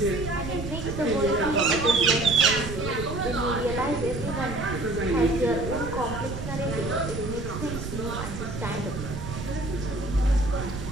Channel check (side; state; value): right; noise; rumble, 7 dB below the sound